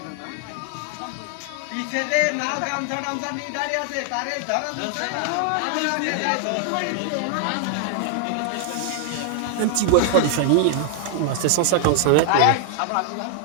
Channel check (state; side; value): different; both; correlation 0.00